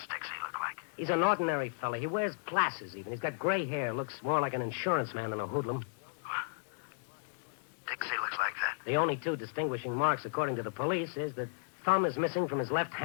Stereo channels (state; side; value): silent; right; digital silence